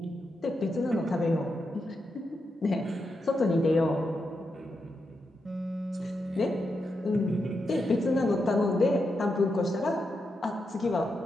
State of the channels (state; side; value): normal; both; correlation 0.85